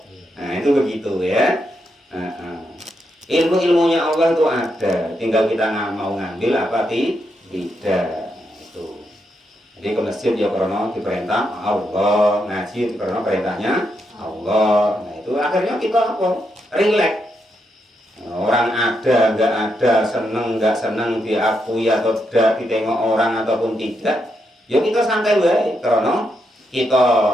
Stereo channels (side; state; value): both; normal; correlation 0.81